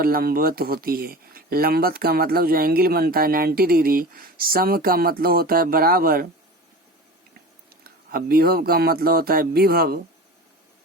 लंबवत होती है। लंबवत का मतलब जो एंगल बनता है 90 डिग्री। सम का मतलब होता है बराबर, अब विभव का मतलब होता है विभव,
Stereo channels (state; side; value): normal; both; correlation 0.34